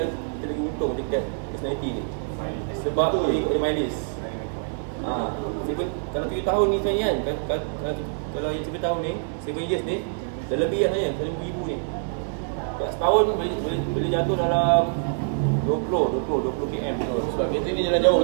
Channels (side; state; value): left; silent; digital silence